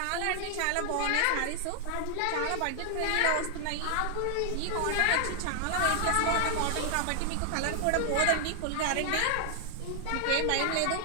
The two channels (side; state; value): both; different; correlation 0.00